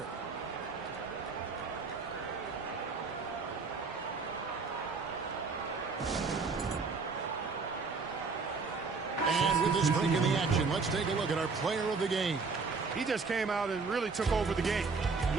And with this break in the action, let's take a look at our player of the game. He just came out and really took over the game,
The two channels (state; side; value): quieter; left; 4.6 dB